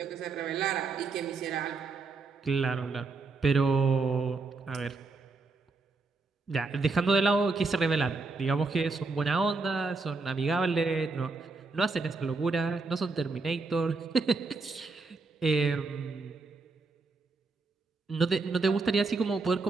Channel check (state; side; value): quieter; left; 4.0 dB